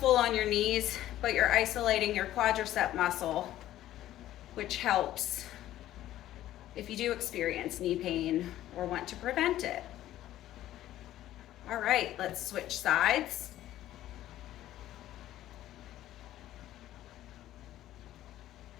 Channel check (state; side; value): quieter; right; 13.5 dB